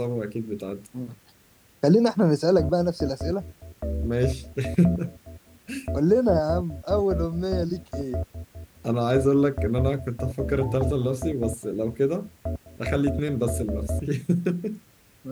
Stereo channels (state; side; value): identical; both; correlation 1.00